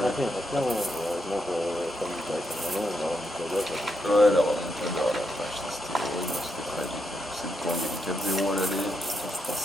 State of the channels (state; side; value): normal; both; correlation 0.81